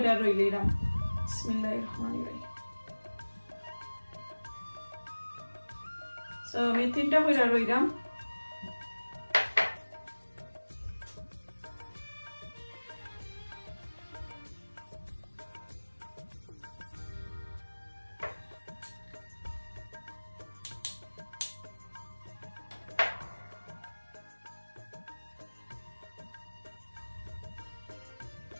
রইলাম। বিসমিল্লাহির রহমানির রহিম। সো আমি 3টা কইরা রইলাম।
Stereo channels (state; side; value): inverted; both; correlation -1.00